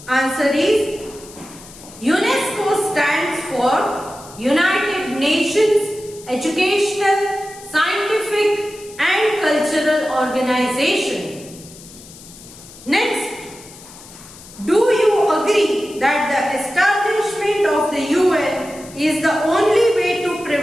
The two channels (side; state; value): left; noise; hiss, 19 dB below the sound